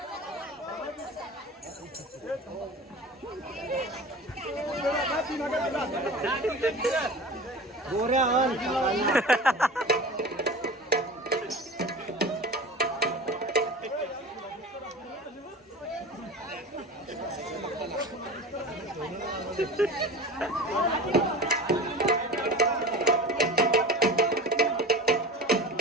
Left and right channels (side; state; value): both; normal; correlation 0.34